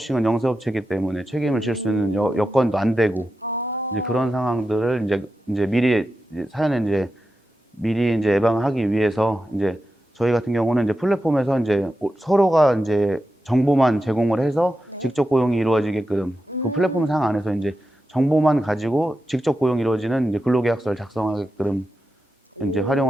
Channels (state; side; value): normal; both; correlation 0.90